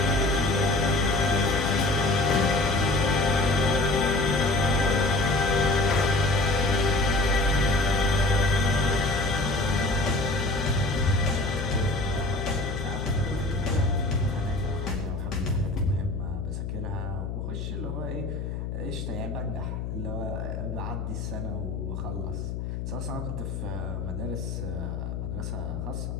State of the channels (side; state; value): left; noise; hum, 5 dB below the sound